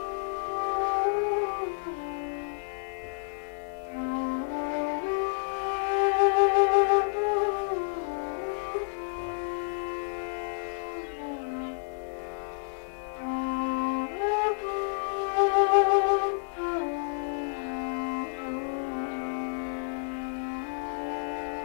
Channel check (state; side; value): silent; right; digital silence